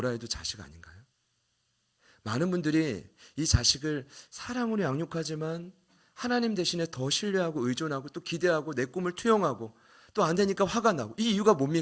해도 자식 아닌가요? 많은 분들이 이 자식을 사랑으로 양육하지만 하나님 대신에 더 신뢰하고 의존하고 또 기대하고 내 꿈을 투영하고 또 안 되니까 화가 나고 이 이유가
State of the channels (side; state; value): both; identical; correlation 1.00